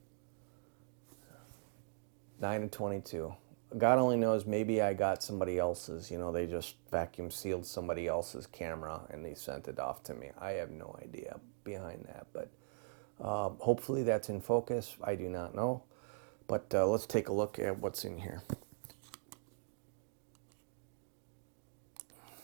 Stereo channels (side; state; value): left; silent; digital silence